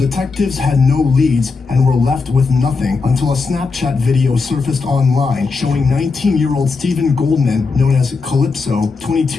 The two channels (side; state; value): right; quieter; 4.4 dB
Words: had no leads and were left with nothing until a Snapchat video surfaced online showing 19-year-old Stephen Goldman, known as Calypso,